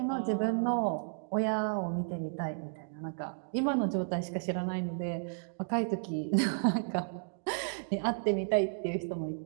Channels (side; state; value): left; silent; digital silence